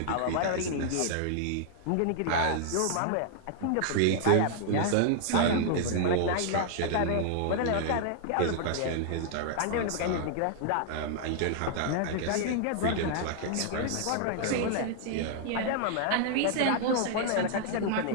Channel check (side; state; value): both; different; correlation 0.00